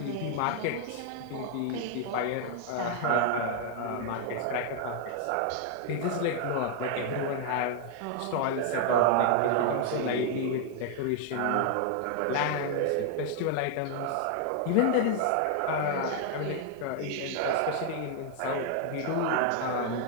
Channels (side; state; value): both; different; correlation 0.00